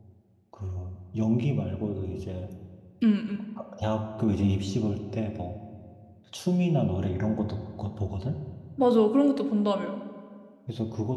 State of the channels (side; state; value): both; identical; correlation 1.00